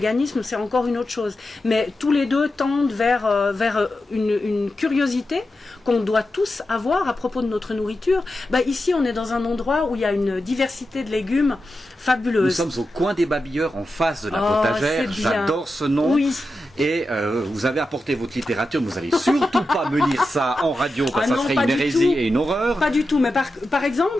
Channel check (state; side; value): normal; both; correlation 0.90